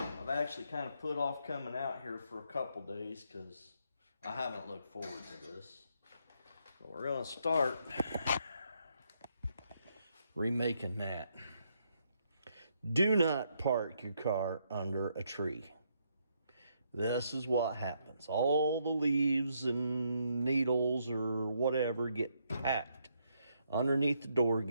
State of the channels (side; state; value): both; inverted; correlation -0.75